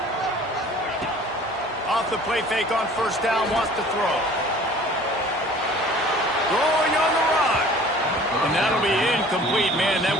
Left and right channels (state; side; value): normal; both; correlation 0.48